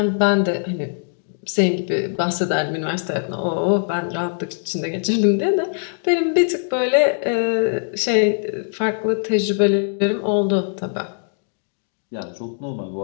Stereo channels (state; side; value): silent; right; digital silence